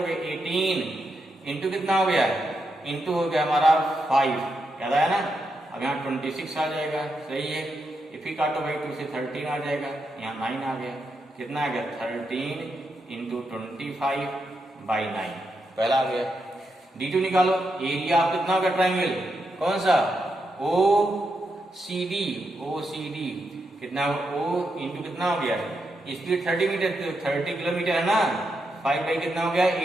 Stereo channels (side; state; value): both; normal; correlation 0.84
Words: 18 इंटू कितना हो गया, इंटू हो गया हमारा 5, याद आया ना। अब यहाँ 26 आ जाएगा, सही है। ये फिर काटो भाई 2 से 13 आ जाएगा, यहाँ 9 आ गया। कितना आ गया 13 इंटू 25/9, पहला आ गया। D2 निकालो, एरिया आप कितना हो गया ट्राइंगल, कौन सा OCD, कितना O इंटू कितना हो गया, स्पीड 30 मीटर 30 किलोमीटर है ना, 5 बाई कितना हो गया